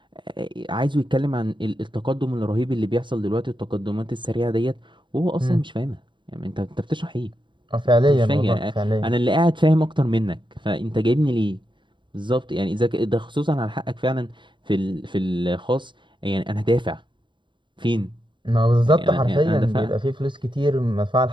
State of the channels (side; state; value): left; late; 0.23 ms